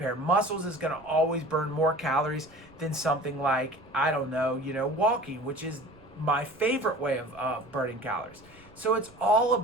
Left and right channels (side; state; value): right; noise; rumble, 27 dB below the sound